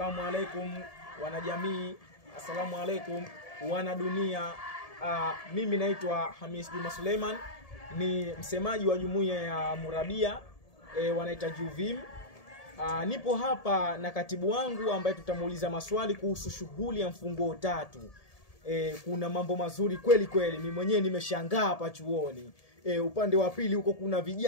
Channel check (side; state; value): right; late; 1.7 ms